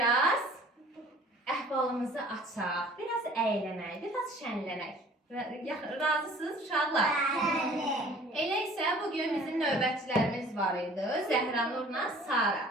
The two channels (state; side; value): normal; both; correlation 0.50